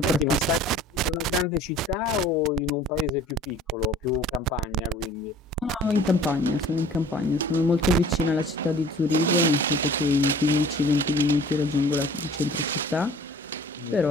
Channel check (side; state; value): both; normal; correlation 0.49